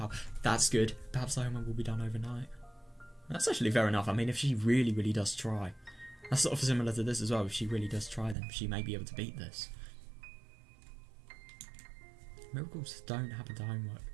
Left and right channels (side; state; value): left; drops out; at 8.3 s